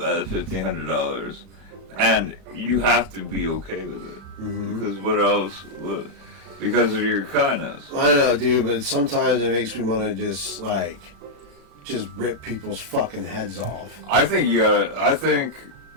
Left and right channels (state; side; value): late; left; 36 ms